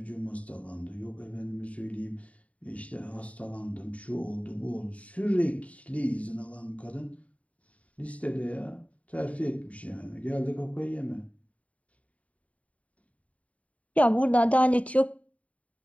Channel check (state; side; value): late; right; 0.067 ms